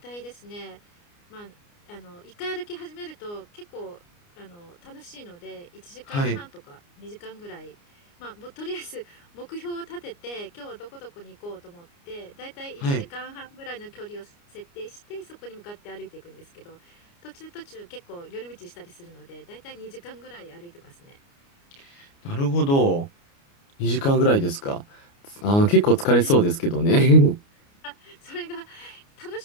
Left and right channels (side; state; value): right; late; 29 ms